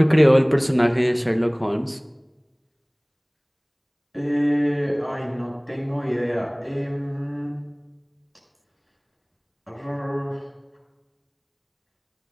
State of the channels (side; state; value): both; identical; correlation 1.00